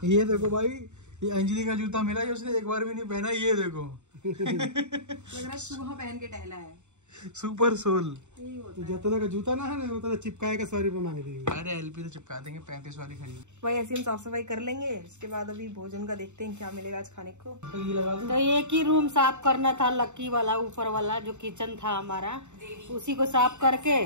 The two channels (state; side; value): late; left; 0.84 ms